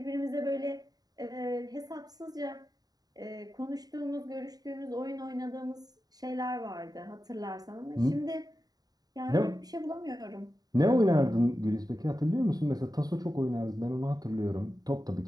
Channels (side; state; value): left; late; 0.18 ms